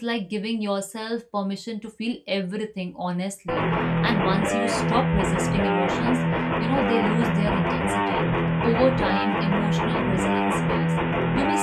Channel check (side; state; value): both; identical; correlation 1.00